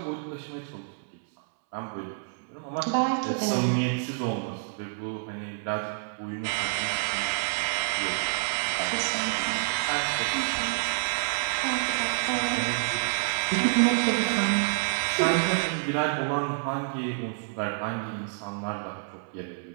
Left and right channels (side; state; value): left; silent; 59 dB below the other